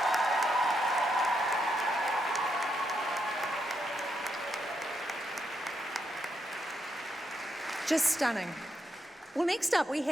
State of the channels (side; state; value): both; normal; correlation 0.81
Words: Just stunning. Well, next up we